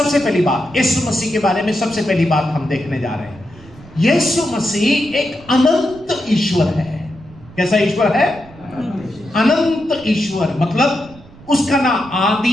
पहली बात, यीशु मसीह के बारे में सबसे पहली बात हम देखने जा रहे हैं। यीशु मसीह एक अनंत ईश्वर है। कैसा ईश्वर है? अनंत ईश्वर। मतलब उसका ना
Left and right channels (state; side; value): noise; right; rumble, 22 dB below the sound